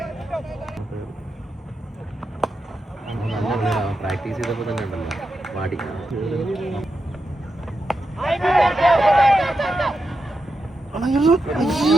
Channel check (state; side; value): normal; both; correlation 0.87